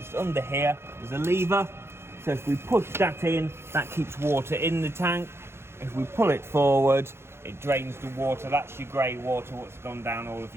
under here there's a lever, so if we push that in, that keeps water in the tank. If we pull it forward, it drains the water. That's your grey water what's gone down all of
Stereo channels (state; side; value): late; left; 0.12 ms